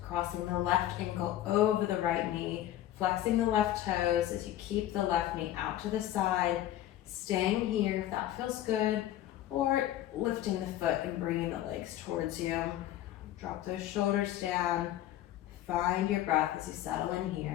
the left ankle over the right knee, flexing the left toes as you keep the left knee out to the side, staying here if that feels good, or lifting the foot and bringing the legs towards you. Drop those shoulders down. Find your breath as you settle in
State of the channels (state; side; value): quieter; right; 13.1 dB